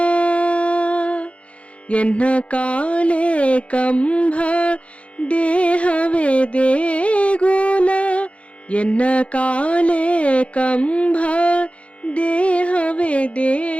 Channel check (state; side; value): late; right; 0.062 ms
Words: ಎನ್ನ ಕಾಲೇ ಕಂಬ ದೇಹವೇ ದೇಗುಲ. ಎನ್ನ ಕಾಲೇ ಕಂಬ ದೇಹವೇ